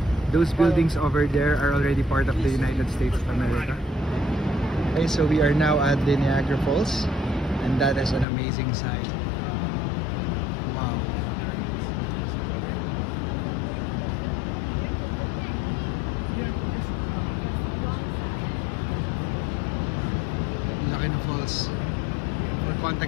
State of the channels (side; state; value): right; drops out; at 8.2 s